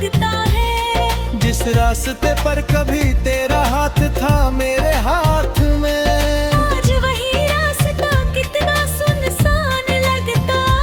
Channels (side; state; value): both; identical; correlation 1.00